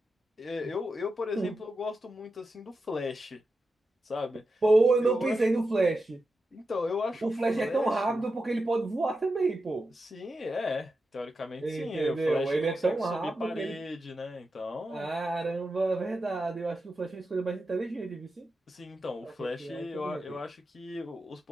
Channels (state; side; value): normal; both; correlation 0.89